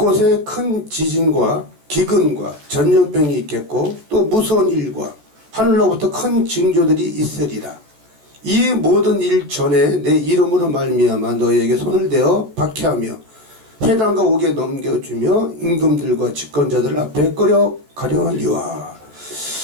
큰 지진과 기근과 전염병이 있겠고 또 무서운 일과 하늘로부터 큰 징조들이 있으리라. 이 모든 일 전에 내 이름으로 말미암아 너희에게 손을 대어 박해하며 회당과 옥에 넘겨주며 임금들과 집권자들 앞에 끌어가려니와.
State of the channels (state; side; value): late; left; 14 ms